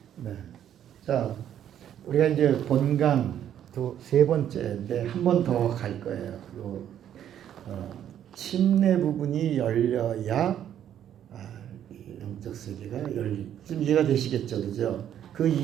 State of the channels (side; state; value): left; quieter; 10.3 dB